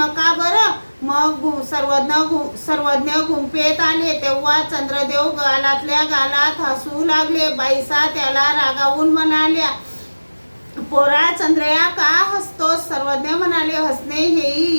बरं। मग सर्वज्ञ गुंफेत आले। तेव्हा चंद्रदेव गालातल्या गालात हसू लागले। बाईसा त्याला रागावून म्हणाल्या, पोरा चंद्रया का हसतोस? सर्वज्ञ म्हणाले, हसणे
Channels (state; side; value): inverted; both; correlation -1.00